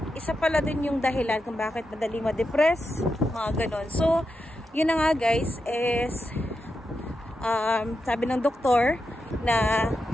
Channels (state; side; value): normal; both; correlation 0.87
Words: isa pala din yung dahilan kung bakit madali ma-depress, mga ganon. So yun na nga guys, is sabi ng doktor na